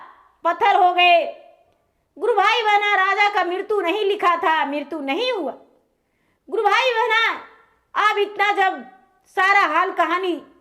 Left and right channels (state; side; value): identical; both; correlation 1.00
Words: पत्थर हो गए। गुरु भाई बहना राजा का मृत्यु नहीं लिखा था, मृत्यु नहीं हुआ। गुरु भाई बहना अब इतना जब सारा हाल कहानी